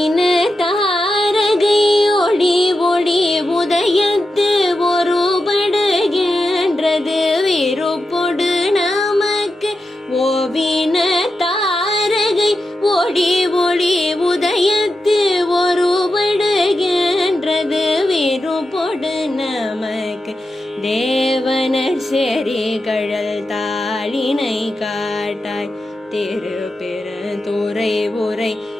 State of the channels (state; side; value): normal; both; correlation 0.90